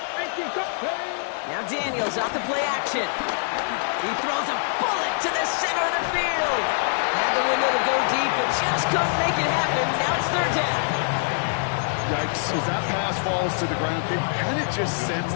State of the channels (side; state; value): right; silent; digital silence